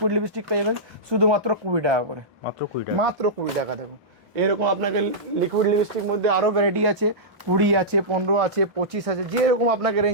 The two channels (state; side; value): normal; both; correlation -0.14